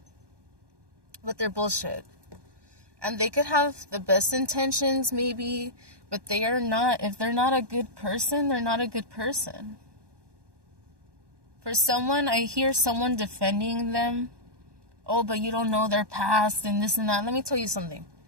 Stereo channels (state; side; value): late; left; 1.1 ms